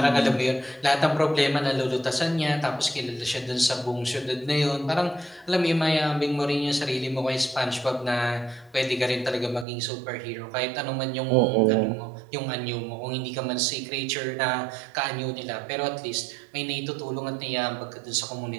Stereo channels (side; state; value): left; drops out; at 9.7 s